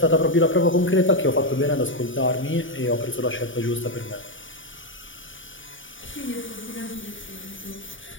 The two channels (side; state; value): right; late; 0.56 ms